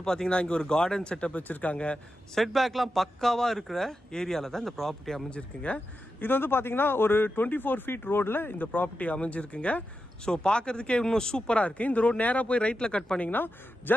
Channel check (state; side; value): normal; both; correlation 0.89